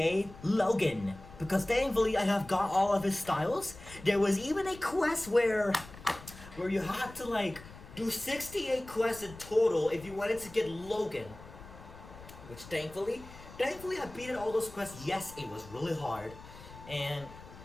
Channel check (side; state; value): left; noise; rumble, 17 dB below the sound